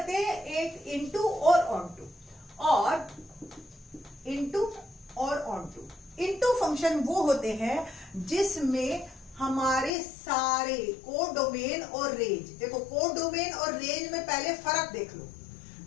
हैं एक इनटू और ऑनटू, और इनटू और ऑनटू। इनटू फंक्शन वो होते हैं जिसमें हमारे सारे कोड डोमेन और रेंज, देखो कोड डोमेन और रेंज में पहले फर्क देख लो।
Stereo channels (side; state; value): right; drops out; at 9.9 s